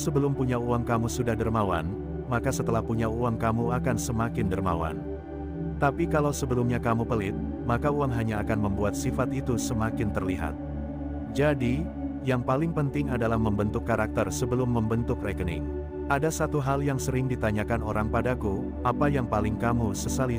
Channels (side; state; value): both; identical; correlation 1.00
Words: punya uang kamu sudah dermawan, maka setelah punya uang kamu akan semakin dermawan. Tapi kalau sebelumnya kamu pelit, maka uang hanya akan membuat sifat itu semakin terlihat. Jadi, yang paling penting adalah membentuk karakter sebelum membentuk rekening. Ada satu hal yang sering ditanyakan orang padaku, apa yang paling kamu sesali